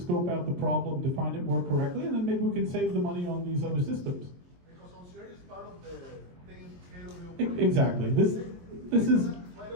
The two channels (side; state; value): left; late; 23 ms